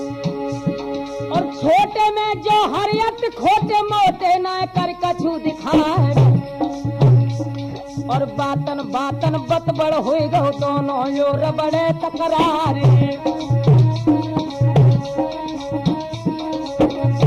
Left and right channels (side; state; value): both; identical; correlation 1.00